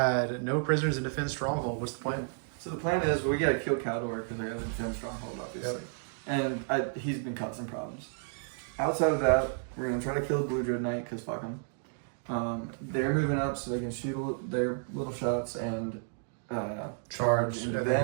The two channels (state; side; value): silent; left; digital silence